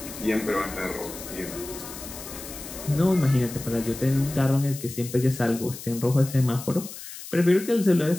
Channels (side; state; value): left; noise; hiss, 12 dB below the sound